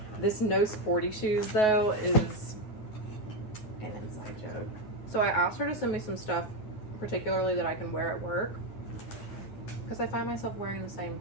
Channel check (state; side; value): late; right; 9.4 ms